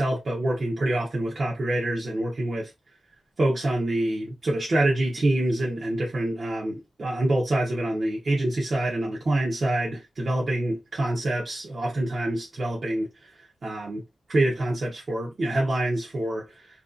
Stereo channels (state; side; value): normal; both; correlation 0.94